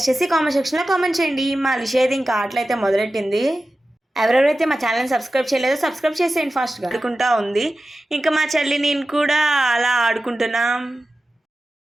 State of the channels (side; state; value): both; normal; correlation 0.94